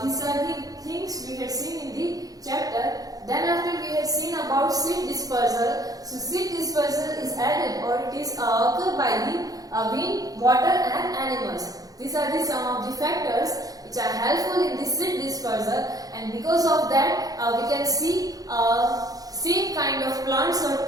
these are the things we had seen in the chapter. Then after we had seen about seed dispersal. So seed dispersal is added or it is occurred by the wind, water and animals. These are the some of the factors which are helpful in the seed dispersal, and because of that we can see same kind of plants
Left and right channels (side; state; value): left; late; 0.18 ms